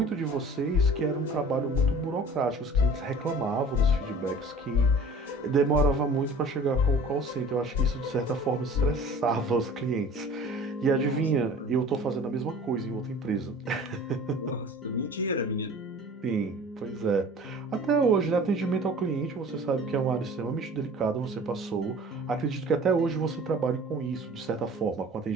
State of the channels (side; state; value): both; normal; correlation 0.45